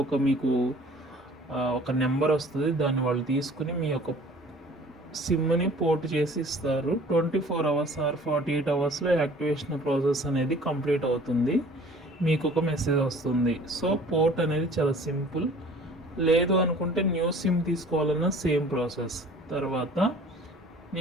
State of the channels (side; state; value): both; normal; correlation 0.49